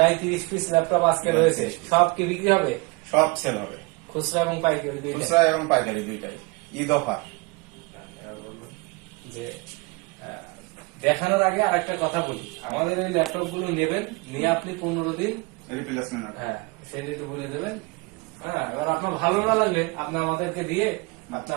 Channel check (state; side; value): quieter; left; 26.9 dB